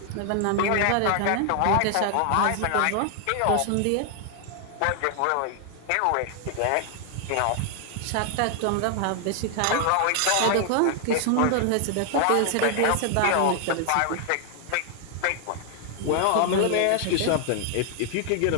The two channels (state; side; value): different; both; correlation 0.00